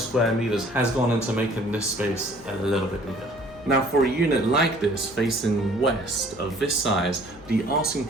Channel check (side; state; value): left; noise; hum, 23 dB below the sound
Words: square meters has gone into making this space a little bit bigger. Now for a unit like this facing west of this size, the asking